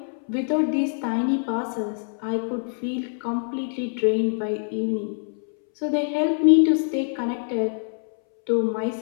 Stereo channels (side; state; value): right; silent; 62 dB below the other